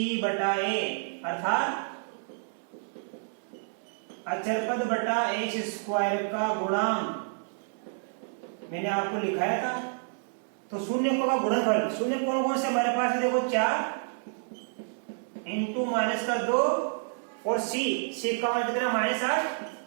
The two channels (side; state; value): left; silent; digital silence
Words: बटा a, अर्थात अचरपद बटा x स्क्वायर का गुणांक, मैंने आपको लिखाया था। तो शून्यकों का गुणनफल, शून्य कौन कौन से हमारे पास है, देखो 4 इंटू माइनस का 2 और c का मान कितना -8